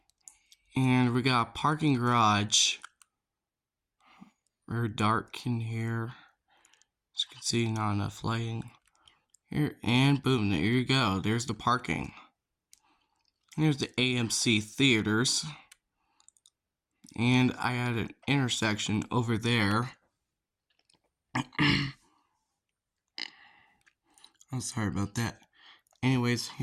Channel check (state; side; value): identical; both; correlation 1.00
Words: And we got a parking garage very dark in here. As you can see, not enough lighting here, and boom, there you go. There's the parking. Here's the AMC theaters, and I had an intersection over there. I'm sorry about that. Anyways,